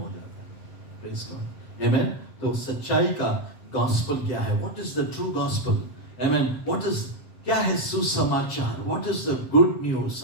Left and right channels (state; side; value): late; right; 7.7 ms